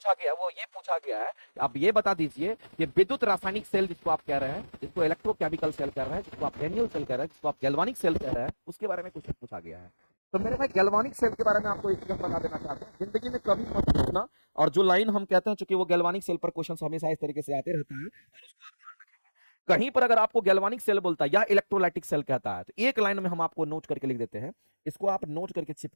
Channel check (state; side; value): inverted; both; correlation -1.00